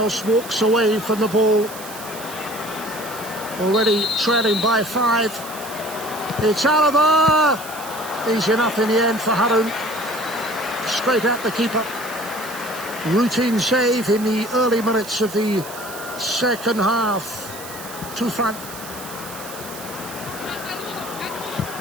walks away from the ball. Already trailing by 5. It's Alaba! Easy enough in the end for Harun. Straight at the keeper. Routine save in the early minutes of the second half. To front.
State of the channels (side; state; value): right; noise; hiss, 13 dB below the sound